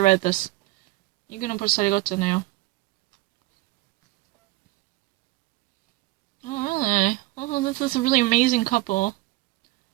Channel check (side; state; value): left; quieter; 19.8 dB